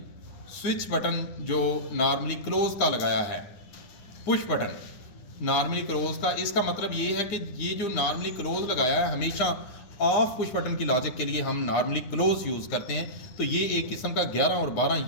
स्विच बटन जो नॉर्मली क्लोज का लगाया है, पुश बटन नॉर्मली क्लोज का, इसका मतलब ये है कि ये जो नॉर्मली क्लोज लगाया है हमेशा ऑफ पुश बटन की लॉजिक के लिए हम नॉर्मली क्लोज यूज़ करते हैं। तो ये एक किस्म का 11 और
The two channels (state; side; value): late; right; 9.5 ms